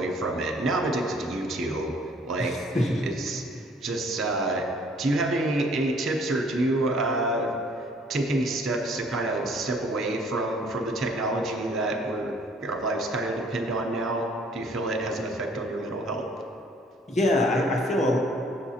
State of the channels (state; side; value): normal; both; correlation 0.59